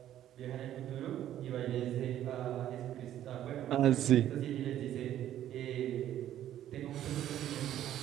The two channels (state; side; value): quieter; left; 11.8 dB